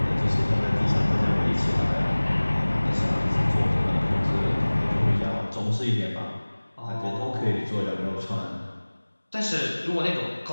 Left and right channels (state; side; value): inverted; both; correlation -1.00